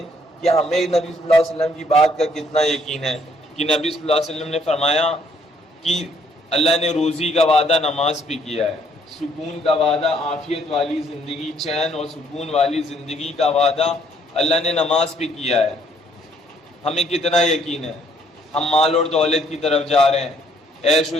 کہ ہمیں نبی صلی اللہ علیہ وسلم کی بات کا کتنا یقین ہے کہ نبی صلی اللہ علیہ وسلم نے فرمایا کہ اللہ نے روزی کا وعدہ نماز پہ کیا ہے، سکون کا وعدہ، عافیت والی زندگی، چین اور سکون والی زندگی کا وعدہ اللہ نے نماز پہ کیا ہے۔ ہمیں کتنا یقین ہے؟ ہم مال اور دولت کی طرف جا رہے ہیں، عیش و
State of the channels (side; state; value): both; normal; correlation 0.66